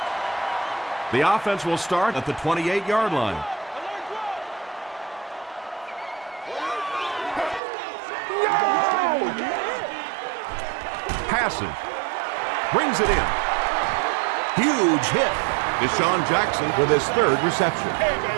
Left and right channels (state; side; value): drops out; left; at 7.6 s